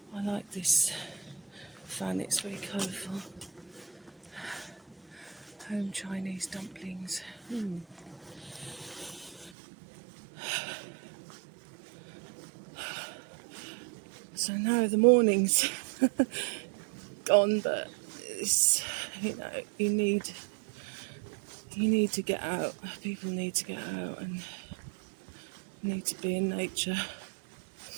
I like this fan, it's very colourful. Home Chinese dumplings. So now the morning's gone, but it's, you need to get out. People need to get out and need to be in nature.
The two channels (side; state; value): left; drops out; at 9.5 s